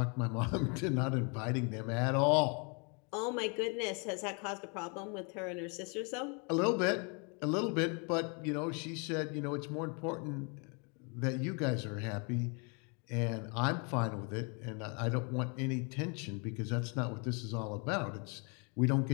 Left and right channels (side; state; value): right; quieter; 34.8 dB